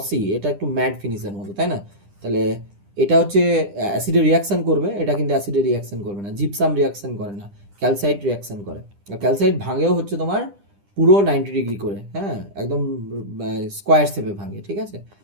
এটা একটু ম্যাট ফিনিশের মতো, তাই না? তাহলে এটা হচ্ছে অ্যাসিডে রিয়াকশান করবে, এটা কিন্তু অ্যাসিডে রিয়াকশান করবে না। জিপসাম রিয়াকশান করে না, ক্যালসাইট রিয়াকশান করে। আর ক্যালসাইট ভাঙেও হচ্ছে তোমার পুরো 90 ডিগ্রি করে, হ্যাঁ, একদম স্কোয়ার শেপে ভাঙে, ঠিক আছে?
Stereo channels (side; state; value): left; late; 10 ms